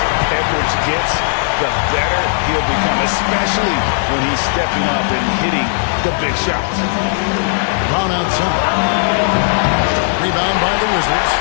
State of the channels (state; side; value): silent; right; digital silence